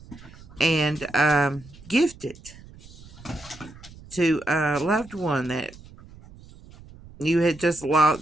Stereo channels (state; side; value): noise; right; rumble, 20 dB below the sound